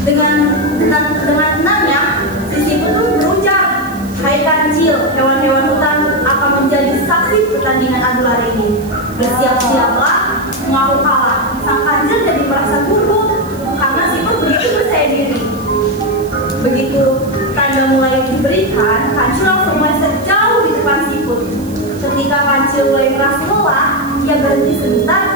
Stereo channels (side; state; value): right; noise; hiss, 21 dB below the sound